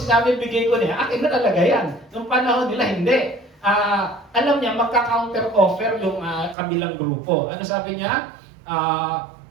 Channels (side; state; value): left; drops out; at 6.6 s